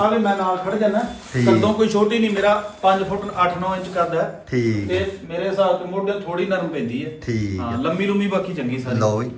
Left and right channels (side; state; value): both; identical; correlation 1.00